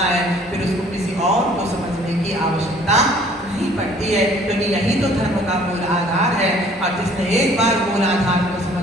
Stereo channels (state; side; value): normal; both; correlation 0.55